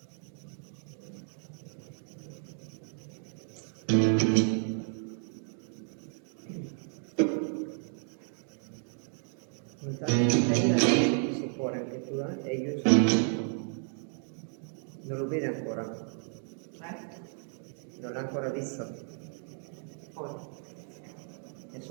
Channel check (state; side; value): silent; left; 56 dB below the other